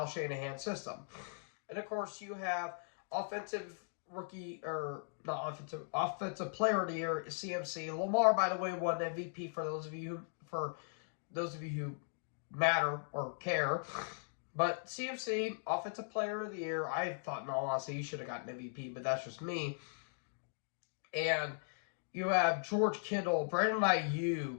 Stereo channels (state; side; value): silent; right; digital silence